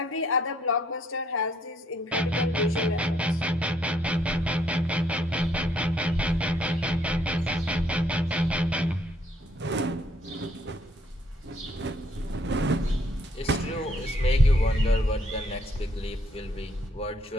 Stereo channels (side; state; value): both; normal; correlation 0.68